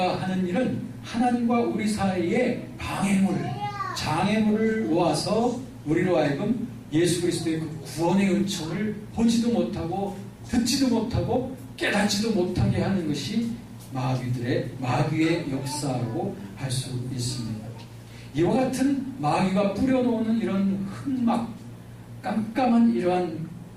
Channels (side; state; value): both; identical; correlation 1.00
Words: 하는 일은 하나님과 우리 사이에 장애물을 놓아서 우리로 하여금 예수 그리스도의 그 구원의 은총을 보지도 못하고 듣지도 못하고 깨닫지도 못하게 하는 것이 마귀의 역사라고 할 수 있습니다. 이와 같은 마귀가 뿌려놓는 이런 흑막, 깜깜한 이러한